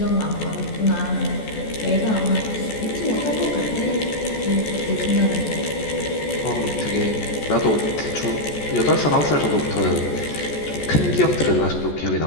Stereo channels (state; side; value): late; right; 14 ms